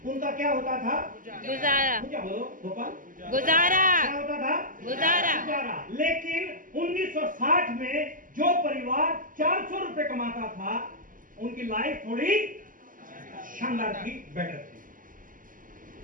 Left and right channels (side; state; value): left; late; 0.39 ms